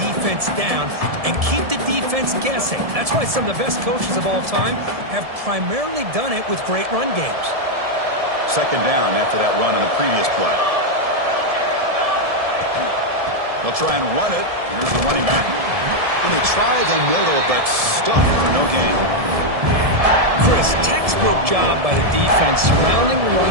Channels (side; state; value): left; late; 1.7 ms